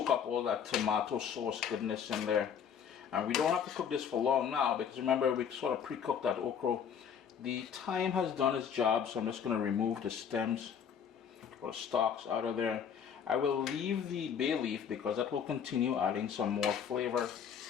up all that tomato sauce goodness in there. And we don't have to cook this for long now, because remember, we sort of pre-cooked that okra. The thyme has done its job, so I'm just going to remove the stems or the stalks out of there. I will leave the bay leaf because that will continue adding some more flavor.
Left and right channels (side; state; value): right; quieter; 7.7 dB